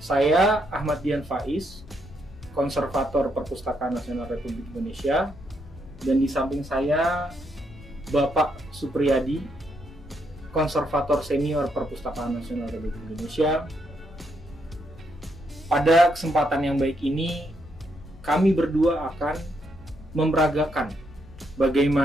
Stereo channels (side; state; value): left; noise; hum, 21 dB below the sound